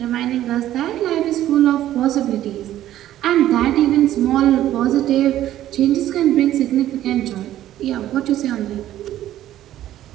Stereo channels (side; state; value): left; quieter; 12.9 dB